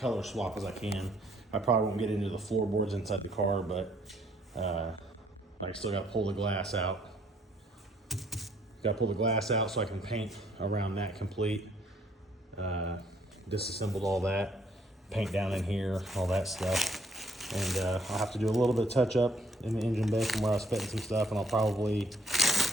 swap as I can. I probably won't get into the floorboards inside the car, but I still got to pull the glass out. Got to pull the glass out so I can paint around that complete. Disassembled all that, paint down in here, all that stuff. And I'll have to do a little bit of touch up in the engine bay from where I was fitting some stuff, and I'll probably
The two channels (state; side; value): normal; both; correlation 0.65